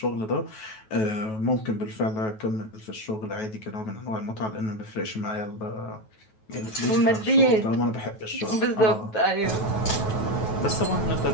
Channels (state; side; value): late; right; 9.2 ms